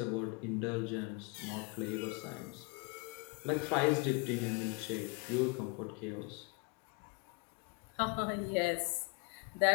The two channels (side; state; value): right; quieter; 31.0 dB